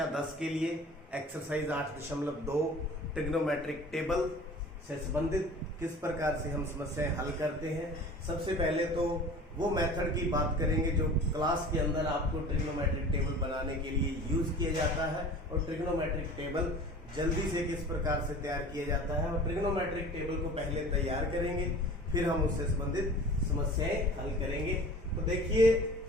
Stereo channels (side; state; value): both; normal; correlation 0.42